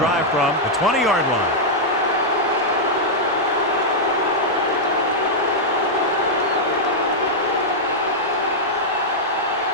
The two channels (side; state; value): both; normal; correlation -0.06